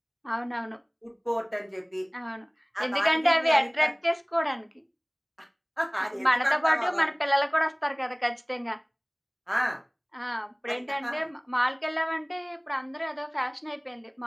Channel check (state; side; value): identical; both; correlation 1.00